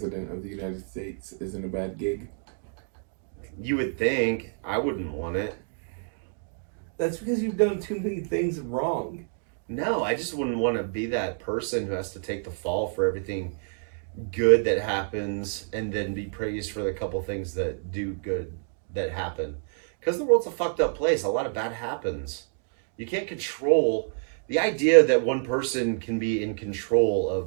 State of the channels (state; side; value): silent; left; digital silence